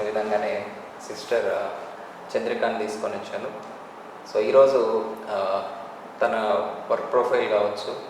విధంగానే సిస్టర్ చంద్రికాని తీసుకొని వచ్చాను. సో ఈరోజు తన వర్క్ ప్రొఫైల్ కావచ్చు,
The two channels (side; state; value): both; identical; correlation 1.00